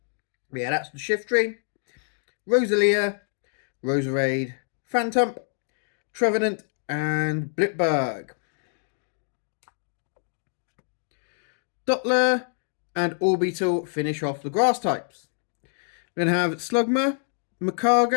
But yeah, that's the Shiftry, Rosalia, Roserade, Phantump, Trevenant and Blipberg. Dottler and Orbital finish off the grass types. We're going to have Slugma,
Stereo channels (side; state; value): right; silent; 61 dB below the other